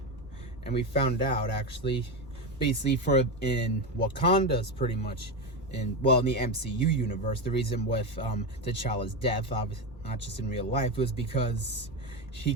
we found out actually, basically in Wakanda's pretty much in the MCU universe, the reason with T'Challa's death, obviously not just in real life, was because he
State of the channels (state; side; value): normal; both; correlation 0.15